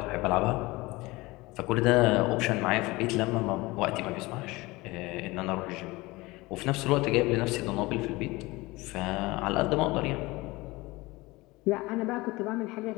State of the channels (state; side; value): quieter; right; 21.8 dB